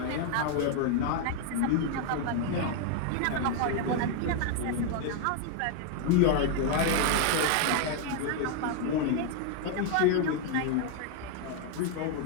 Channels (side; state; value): both; different; correlation 0.00